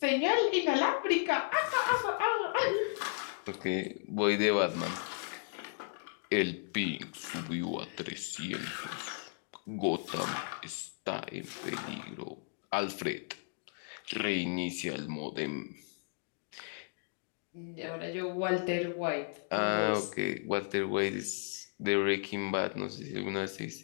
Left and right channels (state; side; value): silent; right; digital silence